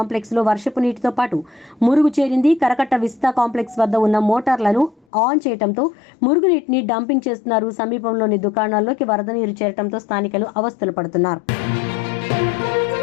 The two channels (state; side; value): drops out; right; at 5.0 s